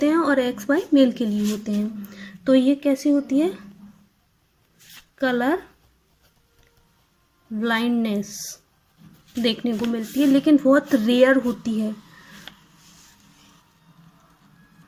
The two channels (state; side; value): identical; both; correlation 1.00